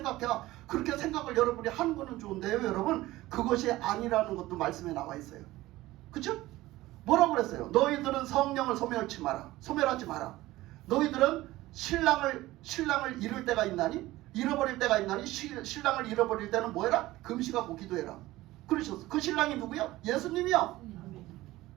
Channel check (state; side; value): quieter; left; 17.5 dB